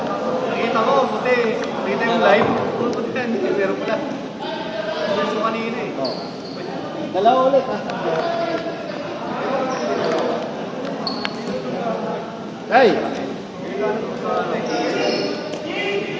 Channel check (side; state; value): both; identical; correlation 1.00